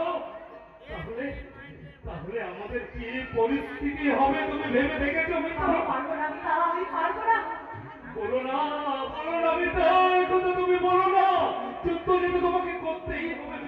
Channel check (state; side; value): identical; both; correlation 1.00